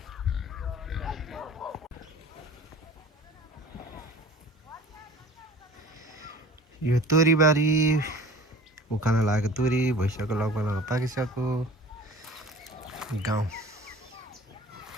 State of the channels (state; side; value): normal; both; correlation 0.44